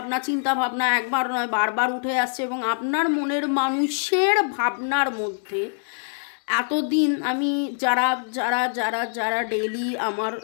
ভাবনা একবার নয় বারবার উঠে আসছে এবং আপনার মনের মানুষের ভাবনার মধ্যে এতদিন আমি যারা যারা যারা যারা ডেইলি আমার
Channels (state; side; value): silent; right; digital silence